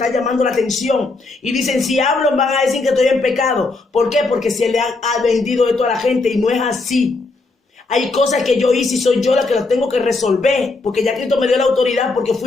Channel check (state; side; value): quieter; right; 3.5 dB